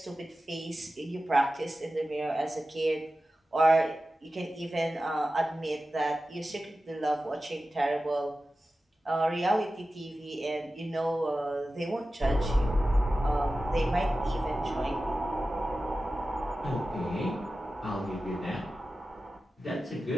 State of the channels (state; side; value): normal; both; correlation 0.94